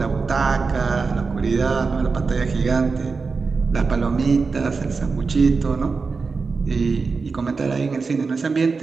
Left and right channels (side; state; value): left; quieter; 4.6 dB